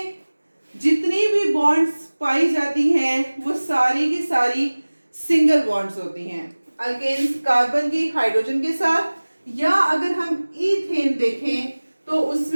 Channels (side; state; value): both; inverted; correlation -1.00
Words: जितनी भी बॉन्ड्स पाई जाती हैं वो सारी की सारी सिंगल बॉन्ड्स होती हैं। अल्केन्स कार्बन की हाइड्रोजन के साथ, या अगर हम ईथेन देखें तो